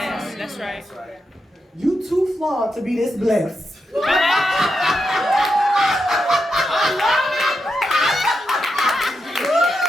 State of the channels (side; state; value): both; normal; correlation 0.85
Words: that's right. You too flawed to be this blessed.